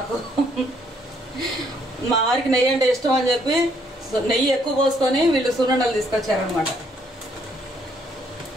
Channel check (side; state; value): both; normal; correlation 0.68